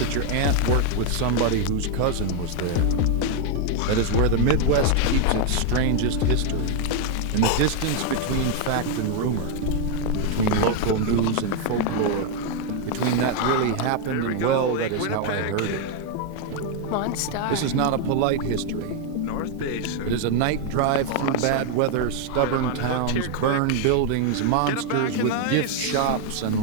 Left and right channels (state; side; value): different; both; correlation 0.01